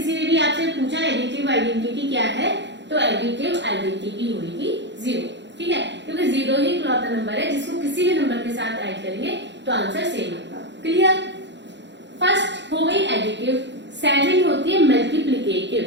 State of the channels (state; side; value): late; left; 0.52 ms